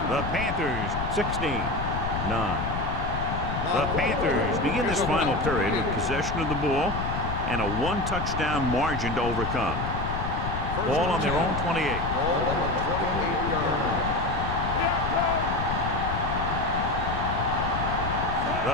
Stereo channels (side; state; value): left; noise; rumble, 4 dB below the sound